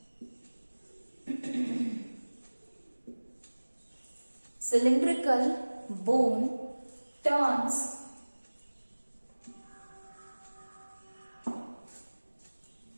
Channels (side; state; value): both; inverted; correlation -1.00